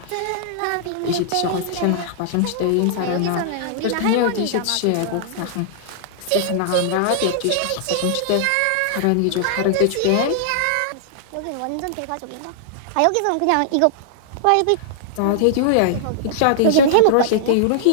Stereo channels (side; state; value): both; different; correlation -0.01